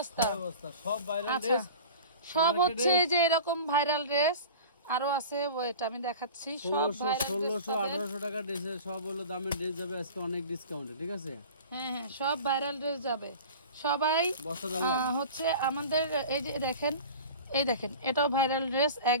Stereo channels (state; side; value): inverted; both; correlation -0.38